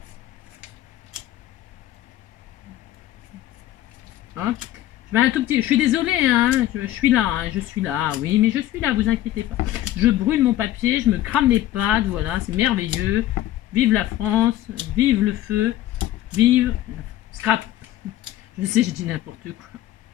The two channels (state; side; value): quieter; right; 13.9 dB